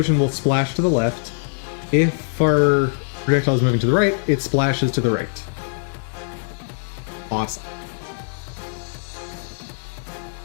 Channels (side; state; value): right; silent; 64 dB below the other